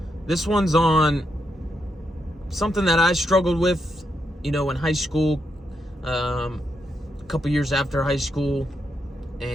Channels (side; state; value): both; normal; correlation 0.82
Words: This one's on something that I struggled with, in high school, a couple years after high school,